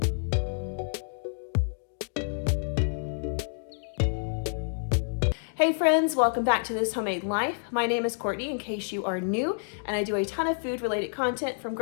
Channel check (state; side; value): silent; right; digital silence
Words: Hey friends, welcome back to This Homemade Life. My name is Courtney in case you are new, and I do a ton of food related content from